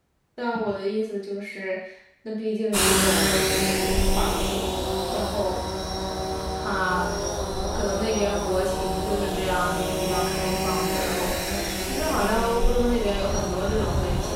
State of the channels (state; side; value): identical; both; correlation 1.00